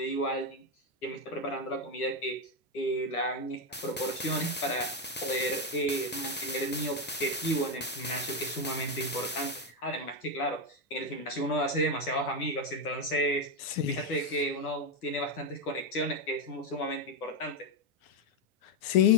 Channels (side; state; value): both; normal; correlation 0.06